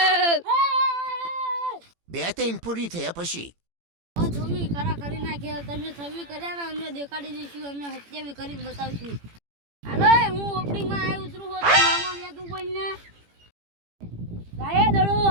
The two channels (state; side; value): late; left; 18 ms